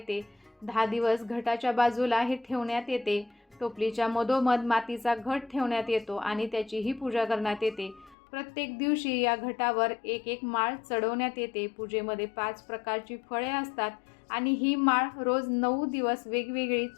10 दिवस घटाच्या बाजूला हे ठेवण्यात येते. टोपलीच्या मधोमध मातीचा घट ठेवण्यात येतो आणि त्याचीही पूजा करण्यात येते. प्रत्येक दिवशी या घटावर एक माळ चढवण्यात येते. पूजेमध्ये 5 प्रकारची फळे असतात आणि ही माळ रोज 9 दिवस वेगवेगळी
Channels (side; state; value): right; drops out; at 8.2 s